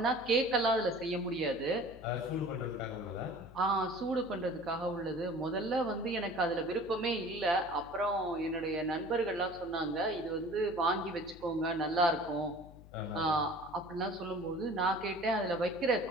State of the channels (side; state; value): left; noise; hum, 19 dB below the sound